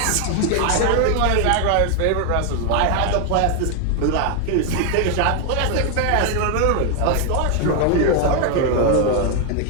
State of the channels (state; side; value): different; both; correlation 0.00